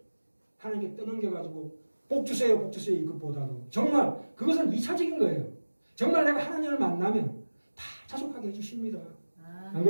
하나님께 떠넘겨가지고 복 주세요 이것보다도 정말 그것은 2차적인 거예요. 정말 내가 하나님을 만나면 다 자족하게 해주십니다. 안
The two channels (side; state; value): both; inverted; correlation -1.00